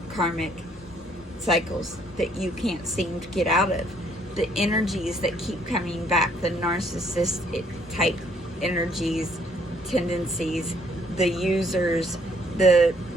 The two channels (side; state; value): both; normal; correlation 0.65